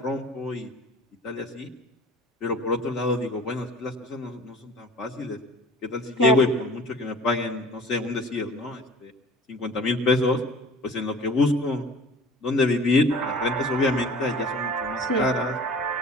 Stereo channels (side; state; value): both; normal; correlation 0.44